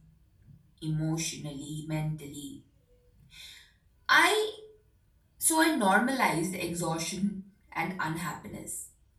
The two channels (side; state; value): both; identical; correlation 1.00